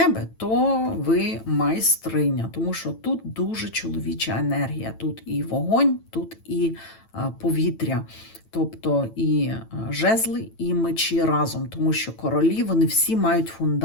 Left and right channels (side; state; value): right; late; 9.0 ms